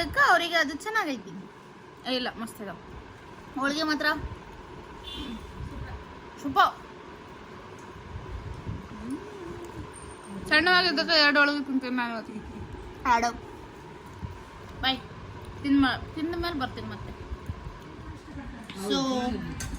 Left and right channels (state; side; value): identical; both; correlation 1.00